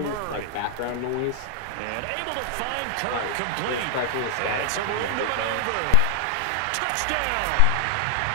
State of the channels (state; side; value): different; both; correlation 0.00